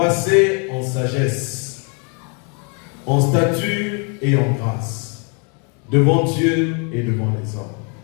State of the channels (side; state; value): right; quieter; 36.8 dB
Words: en sagesse, en stature et en grâce, devant Dieu et devant les hommes.